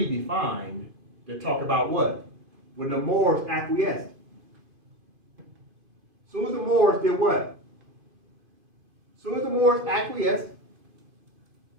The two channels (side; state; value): left; late; 2.5 ms